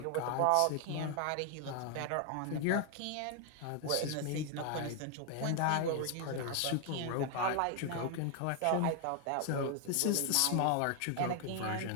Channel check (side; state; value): both; different; correlation 0.00